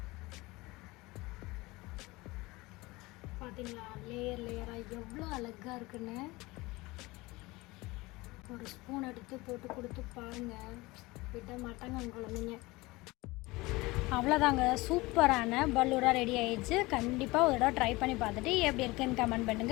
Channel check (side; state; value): right; quieter; 21.8 dB